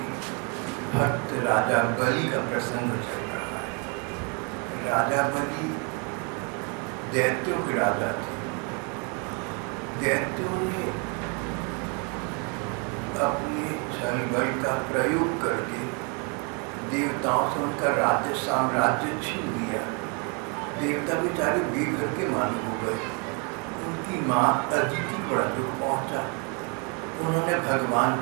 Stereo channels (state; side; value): quieter; left; 35.2 dB